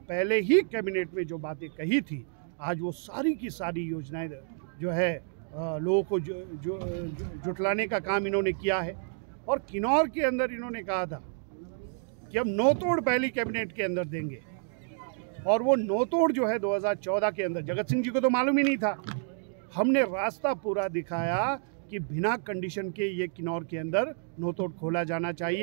पहले ही कैबिनेट में जो बातें कही थी, आज वो सारी की सारी योजनाएं जो है लोगों को जुटलाने का काम इन्होंने किया है। और किन्नौर के अंदर इन्होंने कहा था कि हम नौतोड़ पहली कैबिनेट के अंदर देंगे, और वो नौतोड़ जो है 2014 के अंदर जगत सिंह जी को तो मालूम ही नहीं था। हमने रास्ता पूरा दिखाया कि बिना कंडीशन के ये किन्नौर के अंदर नौतोड़ खोला जाना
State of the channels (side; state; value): left; silent; 58 dB below the other